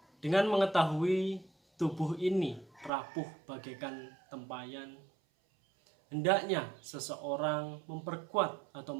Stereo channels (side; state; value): left; drops out; at 2.9 s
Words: Dengan mengetahui tubuh ini rapuh bagaikan tempayan, hendaknya seseorang memperkuat atau